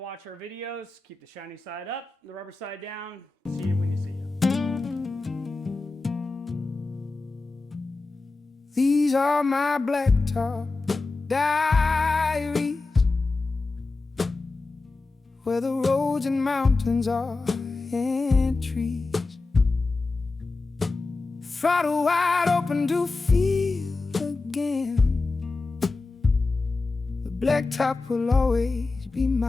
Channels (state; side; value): quieter; right; 3.6 dB